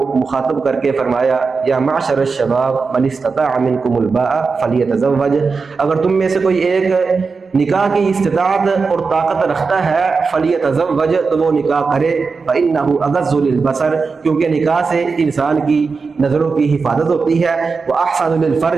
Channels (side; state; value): left; quieter; 4.7 dB